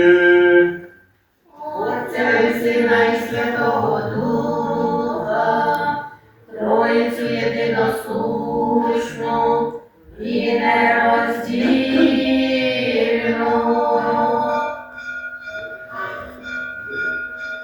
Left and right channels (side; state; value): both; identical; correlation 1.00